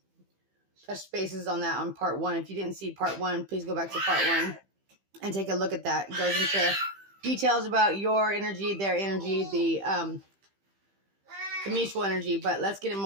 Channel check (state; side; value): late; left; 15 ms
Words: touched bases on that on part one. If you didn't see part one, please go back to part one and take a look at that. It goes into details about your energy, their energy, the mutual energy, but let's get